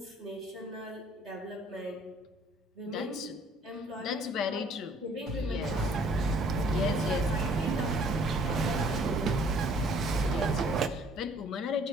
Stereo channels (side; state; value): both; normal; correlation 0.58